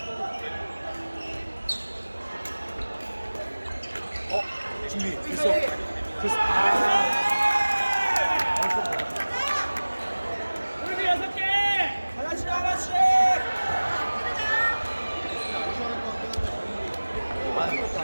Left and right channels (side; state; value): both; inverted; correlation -1.00